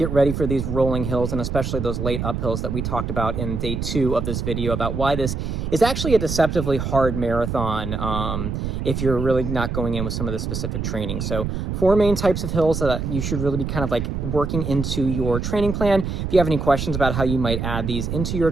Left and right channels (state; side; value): noise; right; rumble, 3 dB below the sound